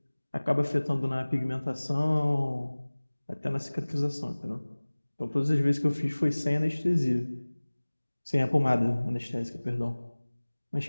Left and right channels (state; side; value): inverted; both; correlation -1.00